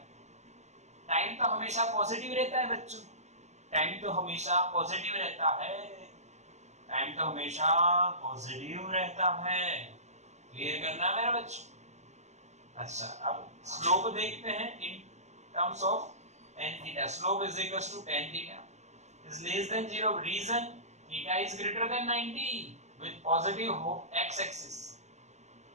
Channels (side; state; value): left; late; 0.33 ms